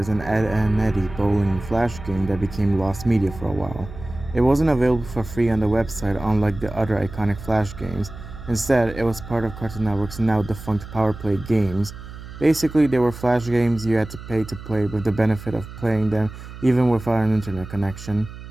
an Ed and Eddie bowling and flash game that became lost media for a while. It wasn't available for free on the website unlike the other iconic flash games. Instead, it was part of Cartoon Network's now defunct Power Play Games. Basically, they were flash games you had to pay to play with the benefit of playing them even without an internet connection.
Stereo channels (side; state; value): right; noise; hum, 13 dB below the sound